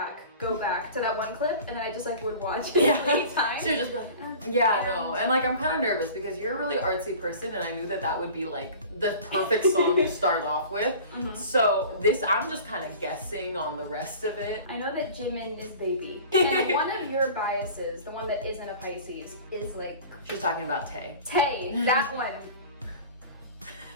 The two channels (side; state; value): both; inverted; correlation -0.41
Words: to that one clip, and then I just like would watch it every time. She would just be like, yeah, no. And like I'm kind of nervous because you're a really artsy person and I knew that would be like the perfect song to start off with. So I'm just kind of guessing on the rest of it. I know that Jimin is baby. And one of your biases, the one that isn't a Pisces, is like... She's talking about Tay. Tay, that one.